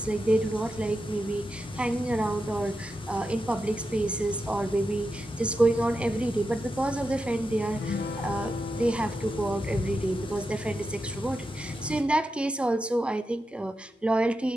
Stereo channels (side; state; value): both; normal; correlation 0.88